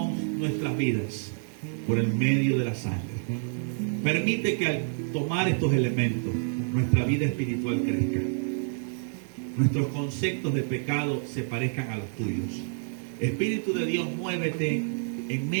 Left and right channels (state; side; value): silent; left; 59 dB below the other